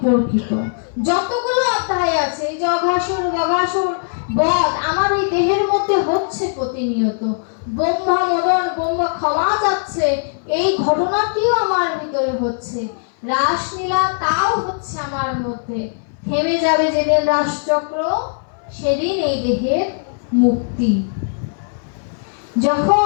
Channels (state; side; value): silent; right; 61 dB below the other